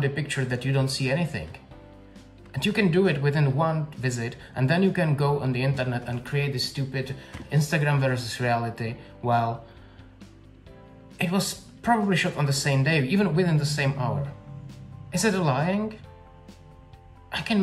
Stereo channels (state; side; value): identical; both; correlation 1.00